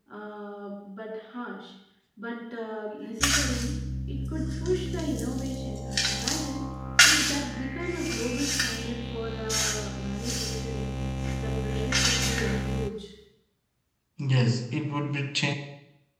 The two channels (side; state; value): both; identical; correlation 1.00